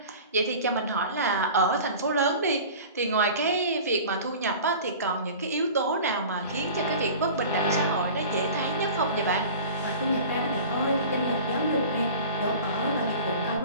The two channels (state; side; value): inverted; both; correlation -0.39